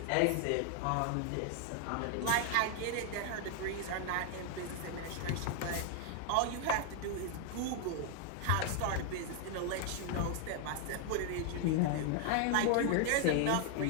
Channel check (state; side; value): different; both; correlation 0.00